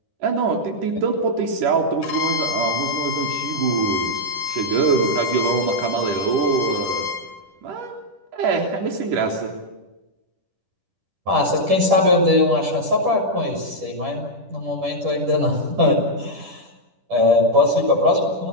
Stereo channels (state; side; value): late; left; 10 ms